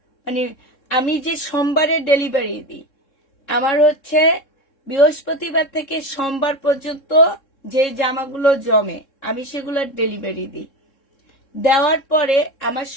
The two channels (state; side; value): late; right; 3.7 ms